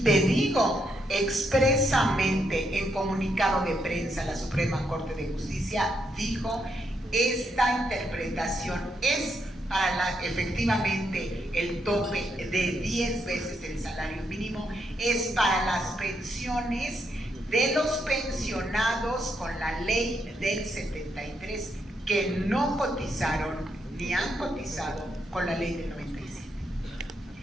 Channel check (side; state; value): both; normal; correlation 0.79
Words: te digo, expresamente en comunicado de prensa la Suprema Corte de Justicia dijo, esta interpretación es para efectivamente el tope de 10 veces el salario mínimo, es para las pensiones de los pensionados con la ley del 73 que no cotizaron ni han cotizado con la ley del 97.